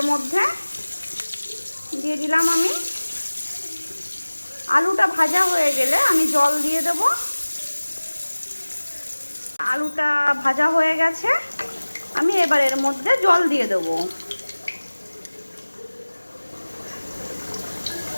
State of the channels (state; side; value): inverted; both; correlation -1.00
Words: মধ্যে, দিয়ে দিলাম আমি। আলুটা ভাজা হয়ে গেলে আমি জল দিয়ে দেব। আলুটা ভাজা হয়ে গেছে, আমি এবার এর মধ্যে জল দিয়ে দেবো।